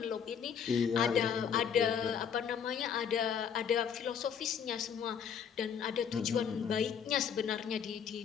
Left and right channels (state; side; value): quieter; right; 7.6 dB